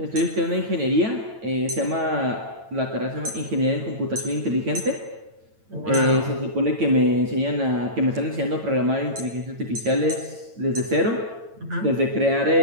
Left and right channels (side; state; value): left; late; 9.0 ms